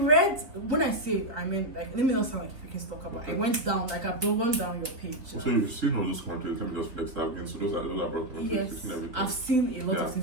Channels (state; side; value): late; left; 3.9 ms